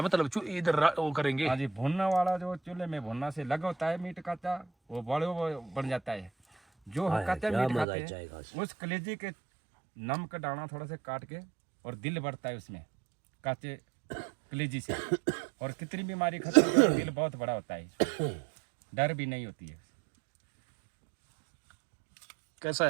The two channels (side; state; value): left; drops out; at 7.9 s